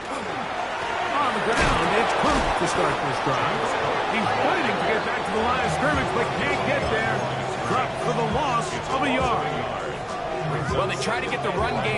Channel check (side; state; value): both; identical; correlation 1.00